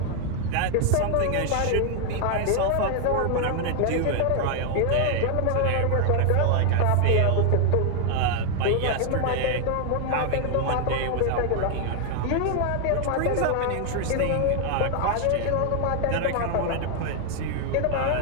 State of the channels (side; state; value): both; different; correlation 0.00